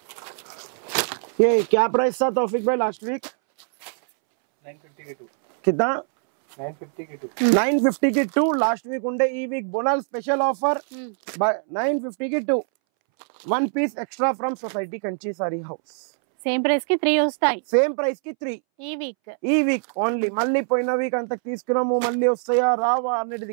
ये क्या प्राइस था तौफिक भाई लास्ट वीक? 950 के 2. कितना? 950 के 2. 950 की 2 लास्ट वीक ఉండే. ఈ వీక్ బోనల్ స్పెషల్ ఆఫర్ 950 की 2 1 piece extra from society Kanchi sari house. Same price కి 3 వస్తాయి. సేమ్ ప్రైస్ కి 3 ఈ వీక్ ఓన్లీ. మళ్ళీ పోయిన వీక్ అంత తీసుకున్నాము మళ్ళీ వస్తాయా రావా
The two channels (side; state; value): left; silent; 63 dB below the other